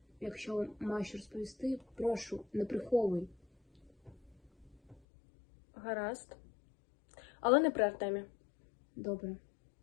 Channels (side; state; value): right; drops out; at 5.0 s